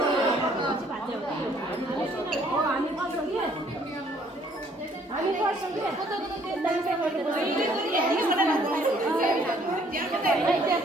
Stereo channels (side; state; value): both; normal; correlation 0.62